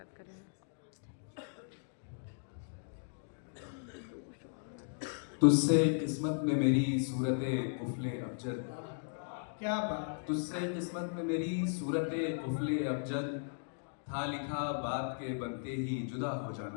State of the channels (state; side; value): silent; right; digital silence